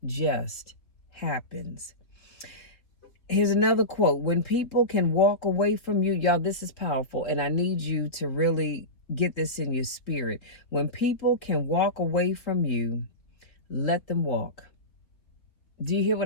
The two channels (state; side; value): late; right; 3.4 ms